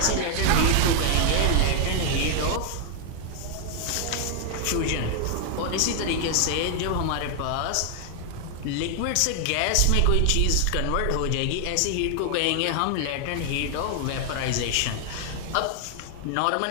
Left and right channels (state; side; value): different; both; correlation 0.00